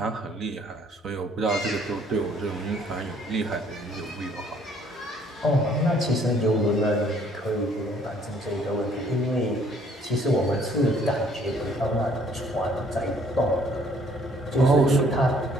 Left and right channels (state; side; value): normal; both; correlation 0.61